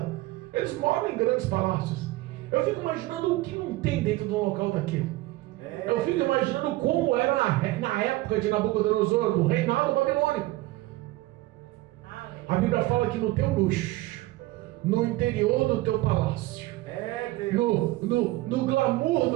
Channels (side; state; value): left; quieter; 18.6 dB